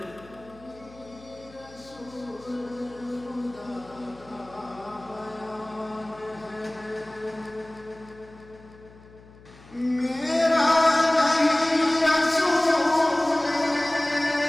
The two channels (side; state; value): left; noise; hum, 23 dB below the sound